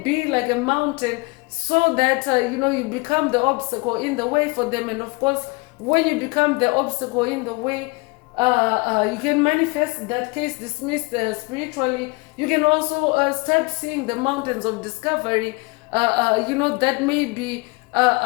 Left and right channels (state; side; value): quieter; right; 27.7 dB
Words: like a mountain, so that you become the obstacle in the way for them. And of course, when you become the obstacle in the way, you can manifest that case dismissed spiritually, You can also start seeing the mountains of discovery, that may be,